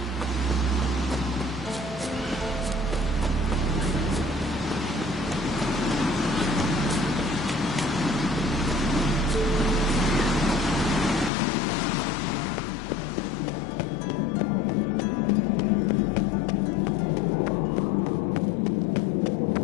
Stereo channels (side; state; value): right; drops out; at 11.3 s